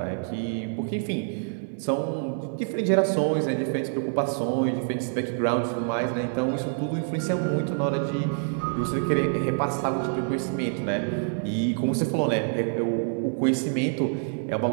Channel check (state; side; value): silent; left; digital silence